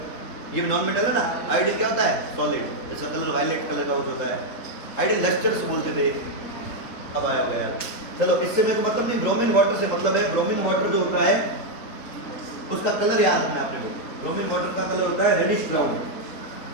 ये नॉन मेटल है ना। आयोडीन क्या होता है? सॉलिड, इसका कलर वायलेट कलर का होता है। आयोडीन लस्टर्स बोलते थे, अब आया गया। चलो, इससे मेरे को मतलब नहीं, ब्रोमीन वाटर से मतलब है, ब्रोमीन वाटर जो होता है उसका कलर याद रखना है आपने को। ब्रोमीन वाटर का कलर होता है रेडिश ब्राउन,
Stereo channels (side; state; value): right; late; 4.1 ms